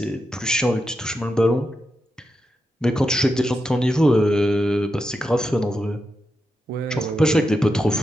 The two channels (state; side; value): normal; both; correlation 0.87